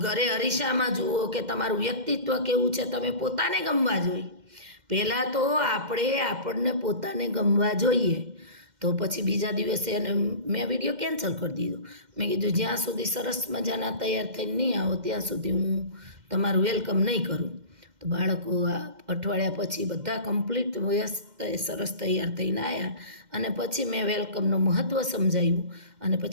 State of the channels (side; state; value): left; late; 2.1 ms